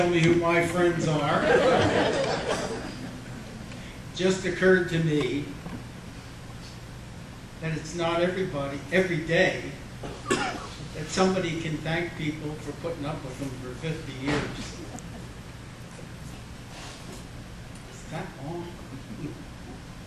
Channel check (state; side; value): identical; both; correlation 1.00